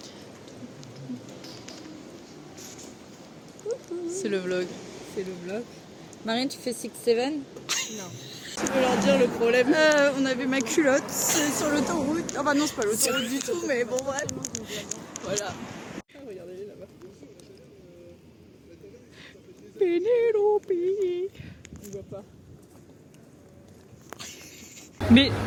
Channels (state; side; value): identical; both; correlation 1.00